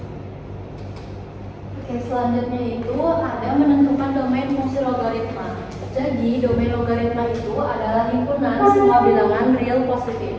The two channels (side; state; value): both; identical; correlation 1.00